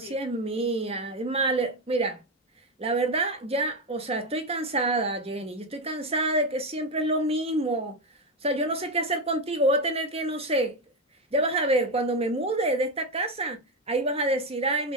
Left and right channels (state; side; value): normal; both; correlation 0.11